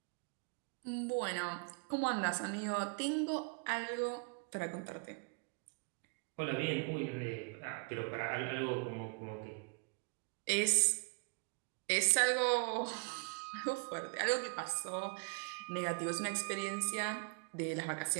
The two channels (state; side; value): quieter; left; 35.3 dB